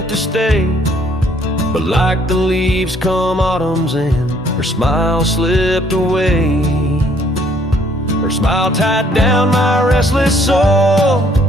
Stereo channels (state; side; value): normal; both; correlation 0.63